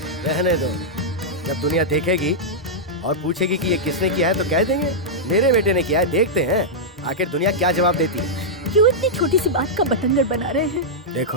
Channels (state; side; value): normal; both; correlation -0.09